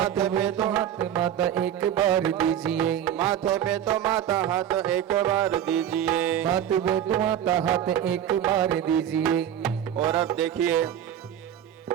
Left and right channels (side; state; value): left; quieter; 10.2 dB